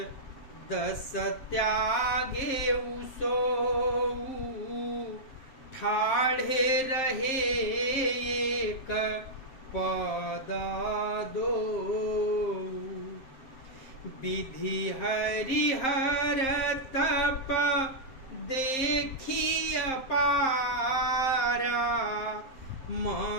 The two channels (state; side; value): late; right; 7.6 ms